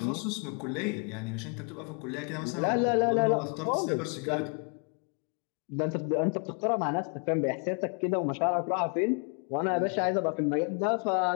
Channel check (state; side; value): quieter; right; 39.1 dB